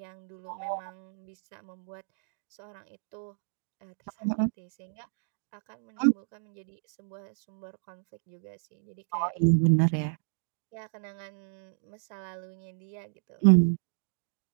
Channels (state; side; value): silent; left; digital silence